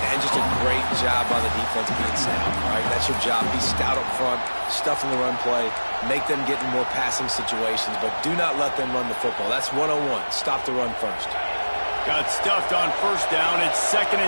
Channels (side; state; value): both; inverted; correlation -1.00